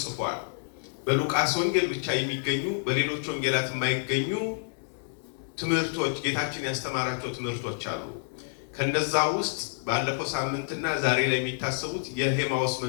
ጽፏል። በሉቃስ ወንጌል ብቻ የሚገኙ በሌሎች ወንጌላት የማይገኙ ትምህርቶች ጌታችን ያስተማራቸው ትምህርቶች አሉ። ከነዛ ውስጥ ባለፈው ሳምንትና ዛሬ ላይ የሚታሰቡት የኤማሁስ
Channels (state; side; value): silent; right; 59 dB below the other